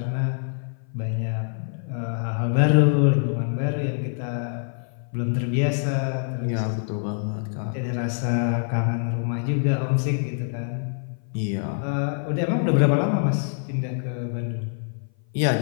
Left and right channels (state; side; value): silent; right; 57 dB below the other